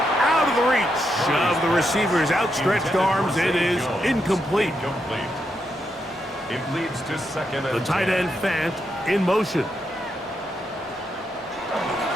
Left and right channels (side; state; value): both; normal; correlation 0.82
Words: out of the reach of the receiver's outstretched arms. It is incomplete. It leads to second and The tight 10. end Fant in motion.